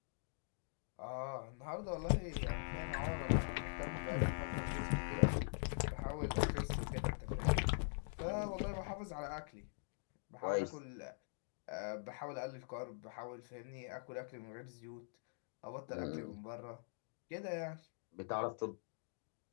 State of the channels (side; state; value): right; silent; digital silence